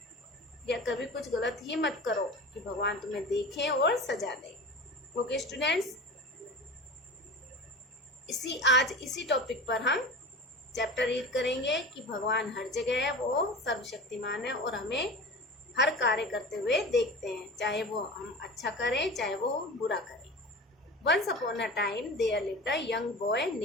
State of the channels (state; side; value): normal; both; correlation 0.33